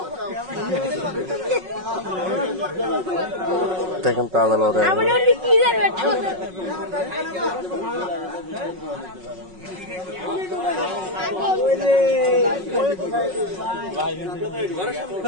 দেখেন তাজা লড়ে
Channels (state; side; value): late; left; 5.4 ms